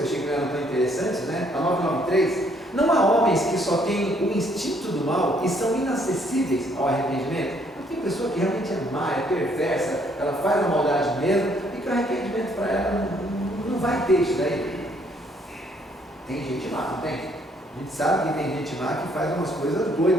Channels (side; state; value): both; normal; correlation 0.66